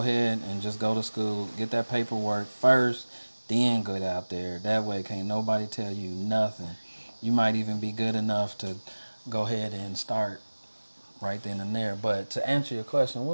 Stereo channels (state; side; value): inverted; both; correlation -1.00